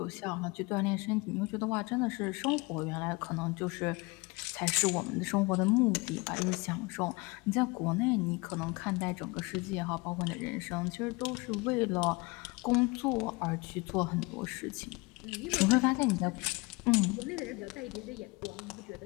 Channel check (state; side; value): quieter; right; 26.1 dB